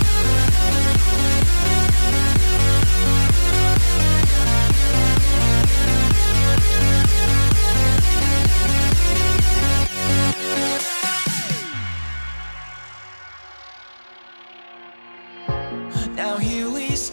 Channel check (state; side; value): inverted; both; correlation -1.00